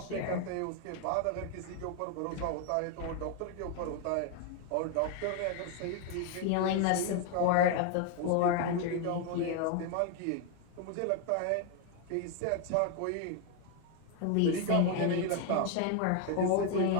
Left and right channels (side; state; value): both; different; correlation 0.01